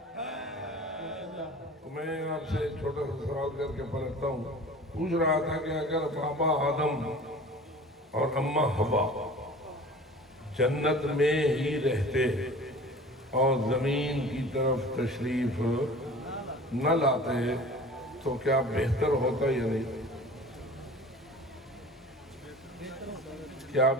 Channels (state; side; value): normal; both; correlation 0.42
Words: میں آپ سے چھوٹا سا سوال کر کے پلٹتا ہوں. پوچھ رہا تھا کہ اگر بابا آدم اور اماں حوا جنت میں ہی رہتے اور زمین کی طرف تشریف نہ لاتے تو کیا بہتر ہوتا یا نہیں؟ کیا